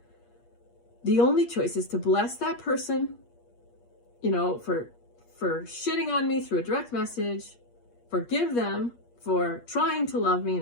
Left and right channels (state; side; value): late; right; 8.5 ms